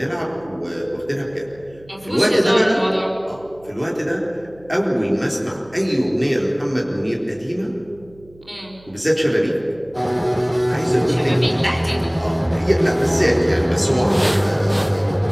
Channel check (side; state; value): right; noise; hum, 25 dB below the sound